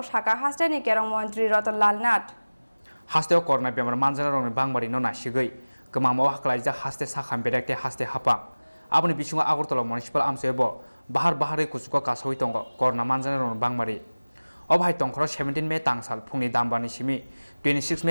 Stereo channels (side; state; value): both; inverted; correlation -1.00